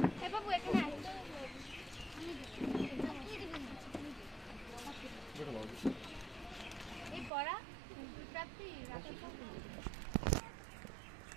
এ বাবু এখানে আয়। এই পড়া প্রাপ্তি রাতে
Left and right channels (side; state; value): left; drops out; at 7.3 s